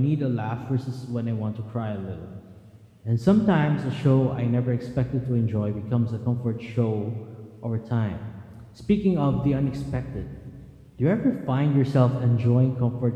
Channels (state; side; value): identical; both; correlation 1.00